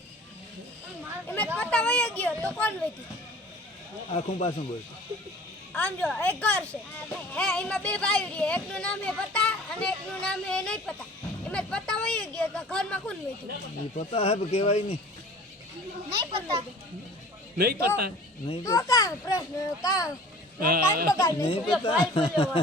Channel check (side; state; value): both; normal; correlation 0.45